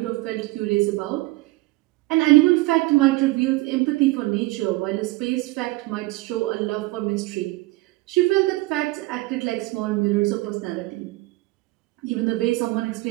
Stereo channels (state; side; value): quieter; left; 20.6 dB